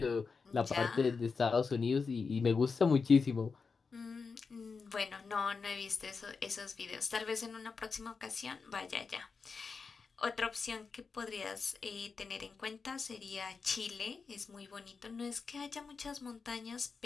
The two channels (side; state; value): right; quieter; 5.0 dB